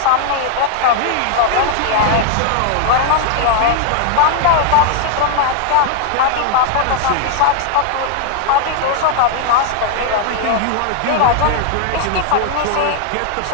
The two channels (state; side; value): different; both; correlation 0.00